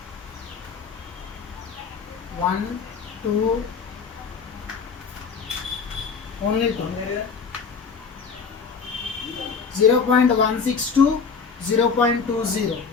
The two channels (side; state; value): right; quieter; 5.6 dB